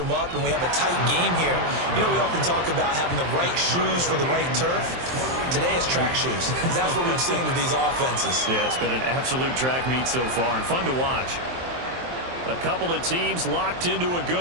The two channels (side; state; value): left; late; 23 ms